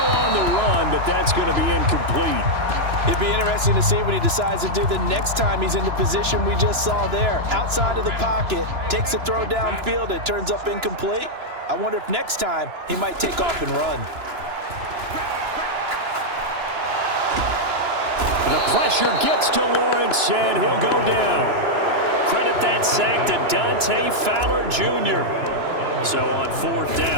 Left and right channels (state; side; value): late; left; 2.9 ms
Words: the run, but that's going to be incomplete. It'd be interesting to see what he decides to do the next time he's in the position we just saw there. Outside of the pocket, takes a throw downfield, it turns up incomplete. I wonder if next time he might take off and run. The pressure gets to Lawrence, and he'll go down. Credit that sack to Dante Fowler Jr. So on 4th